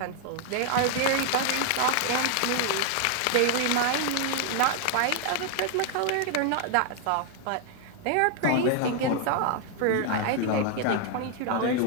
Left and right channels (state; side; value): different; both; correlation 0.00